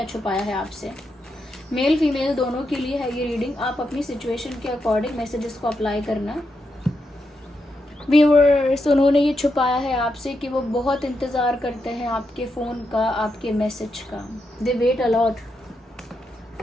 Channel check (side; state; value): both; normal; correlation 0.84